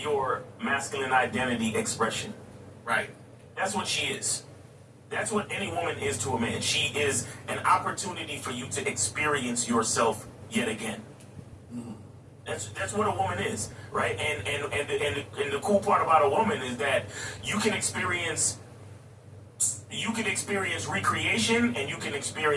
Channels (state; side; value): identical; both; correlation 1.00